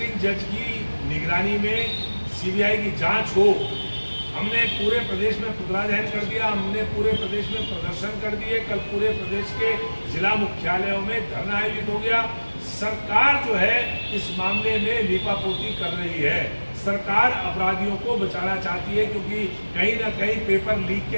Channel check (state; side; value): inverted; both; correlation -1.00